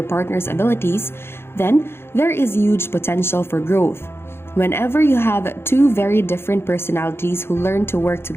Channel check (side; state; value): right; late; 0.12 ms